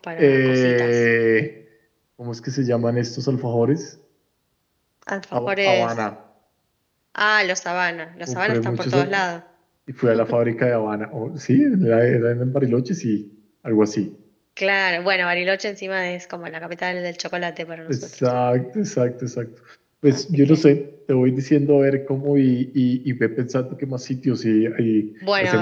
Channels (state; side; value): identical; both; correlation 1.00